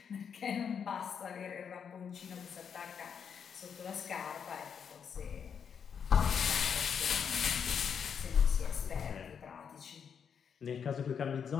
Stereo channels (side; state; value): right; quieter; 7.2 dB